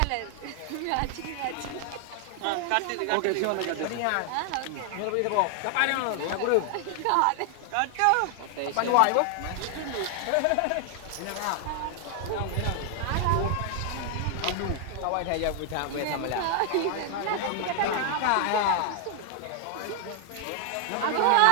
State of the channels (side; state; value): both; different; correlation 0.00